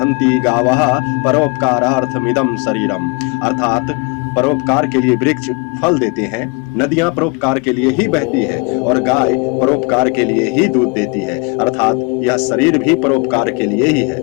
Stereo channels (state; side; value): quieter; right; 30.7 dB